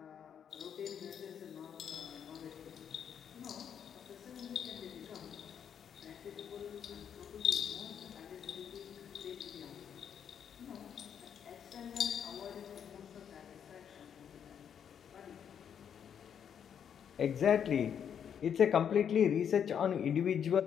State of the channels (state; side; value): quieter; right; 8.2 dB